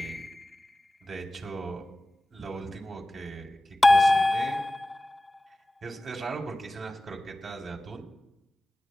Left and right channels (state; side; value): normal; both; correlation 0.96